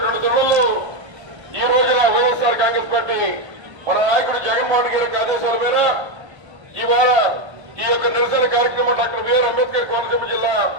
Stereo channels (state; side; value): late; left; 1.3 ms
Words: తరుణంలో ఈ రోజున వైఎస్ఆర్ కాంగ్రెస్ పార్టీ మన నాయకుడు జగన్మోహన్ రెడ్డి గారికి ఆదేశాల మేర ఇవాళ ఈ యొక్క నిరసన కార్యక్రమం డాక్టర్ బిఆర్ అంబేద్కర్ కోనసీమ జిల్లా